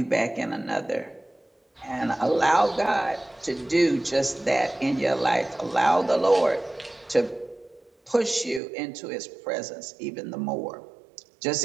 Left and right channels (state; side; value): drops out; left; at 8.6 s